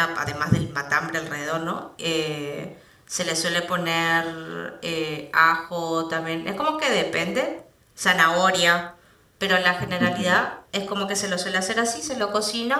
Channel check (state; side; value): identical; both; correlation 1.00